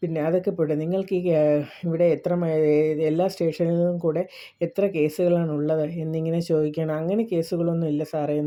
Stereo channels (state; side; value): identical; both; correlation 1.00